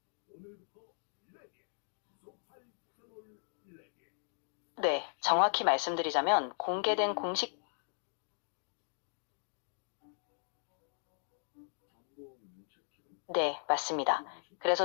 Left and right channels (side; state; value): right; silent; digital silence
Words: 네, 정확히 말씀드리자면 공개된 공식 네, 맞습니다. 그래서